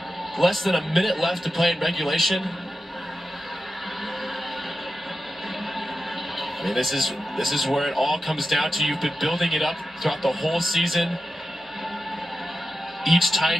less than a minute left to play in regulation. I mean, this is where it all comes down to. You've been building it up throughout the whole season. Each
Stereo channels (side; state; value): both; normal; correlation 0.92